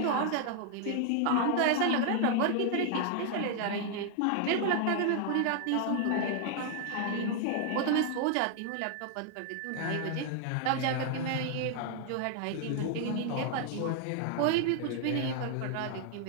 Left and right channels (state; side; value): different; both; correlation 0.00